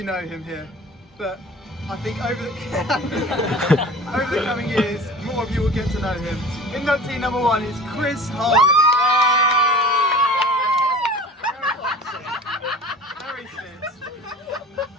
know him here, but I think over the coming years, more of you will get to know him. Inductee number one is Chris Harley. Very fit.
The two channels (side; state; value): both; normal; correlation 0.40